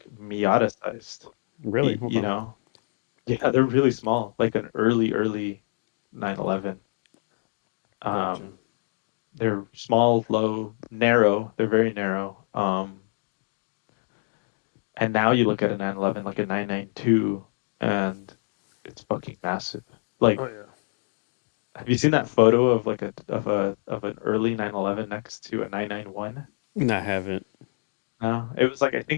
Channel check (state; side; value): silent; right; digital silence